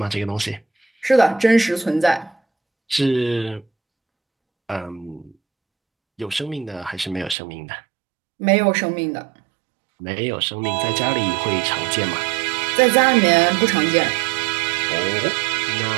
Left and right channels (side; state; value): left; drops out; at 7.4 s